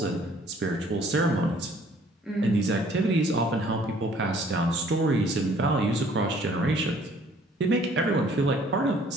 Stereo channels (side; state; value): both; normal; correlation 0.58